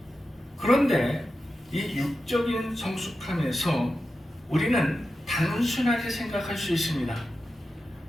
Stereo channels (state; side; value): normal; both; correlation 0.91